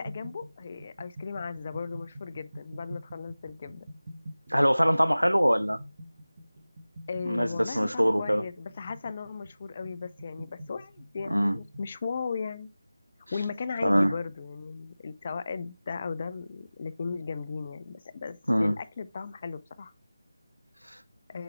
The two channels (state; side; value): inverted; both; correlation -0.97